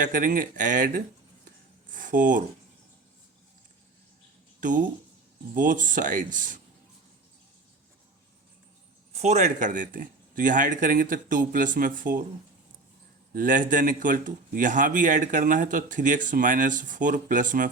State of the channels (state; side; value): quieter; left; 3.4 dB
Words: करेंगे, add 4 to both sides. 4 add कर देते हैं, तो यहाँ ऐड करेंगे तो 2 प्लस में 4 लेस देन इक्वल टू, यहाँ भी ऐड करना है तो 3x माइनस 4 प्लस में